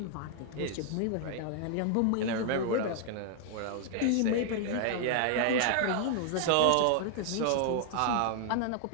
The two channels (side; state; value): both; different; correlation 0.00